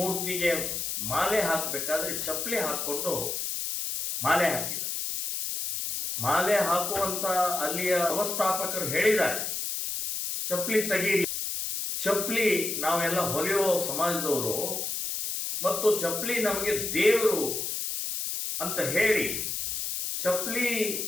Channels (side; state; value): left; noise; hiss, 3 dB below the sound